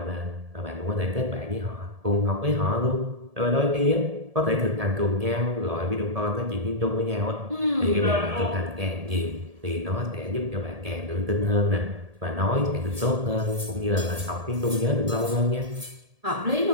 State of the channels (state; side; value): late; left; 1.7 ms